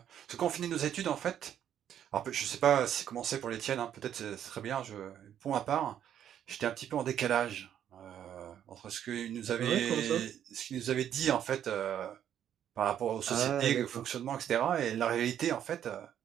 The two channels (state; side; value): quieter; left; 10.0 dB